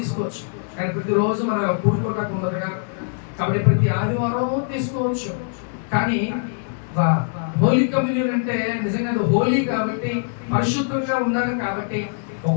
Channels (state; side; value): silent; right; digital silence